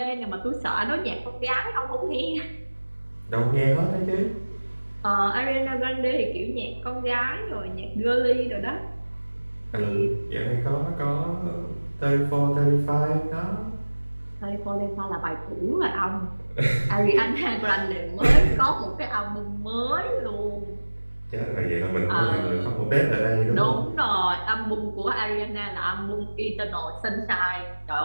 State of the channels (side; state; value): both; inverted; correlation -1.00